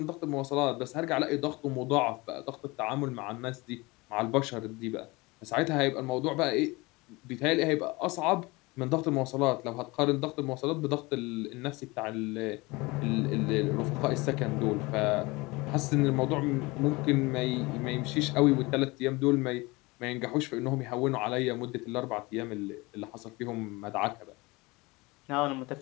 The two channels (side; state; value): right; quieter; 23.7 dB